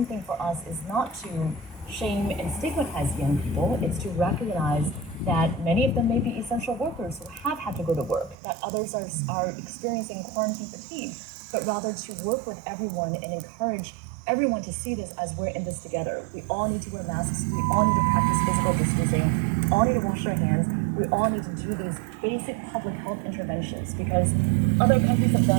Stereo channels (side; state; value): left; drops out; at 8.3 s